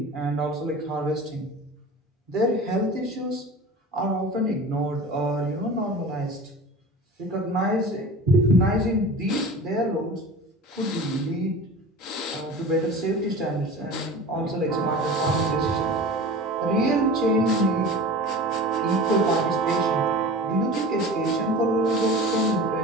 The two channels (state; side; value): normal; both; correlation 0.36